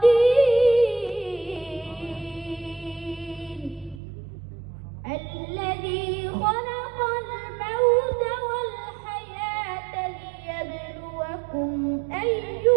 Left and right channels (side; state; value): left; drops out; at 4.0 s